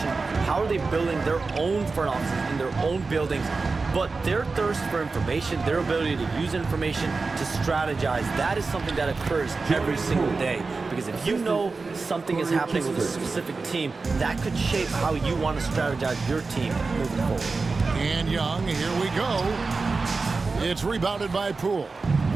How are they building their own front offices in their own buildings? But their thirst for information, their ability to use information to strategize, that is something that occurs every single day. Because if you know something is happening with a specific team, that could shape how you want to strategize your team moving forward. And Young, here we go. It's rebounded by Poole.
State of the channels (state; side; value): quieter; left; 4.1 dB